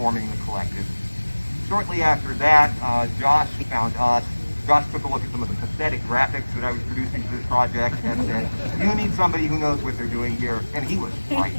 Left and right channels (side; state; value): both; inverted; correlation -1.00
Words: the collective. Shortly after that, Josh found us. Josh took a look at some of the pathetic graphics that I was producing for this project and said, "You need somebody who knows what they're doing here," and he was right.